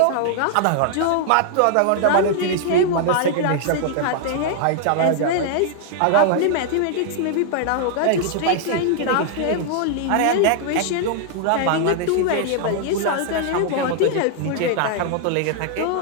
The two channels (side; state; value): both; different; correlation 0.00